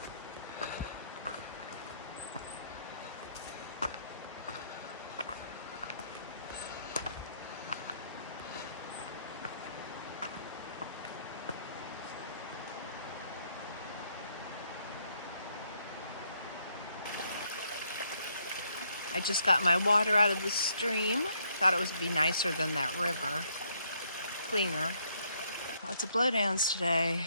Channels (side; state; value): both; inverted; correlation -0.70